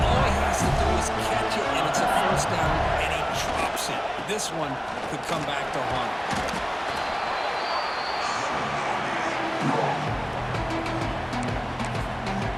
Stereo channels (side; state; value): both; identical; correlation 1.00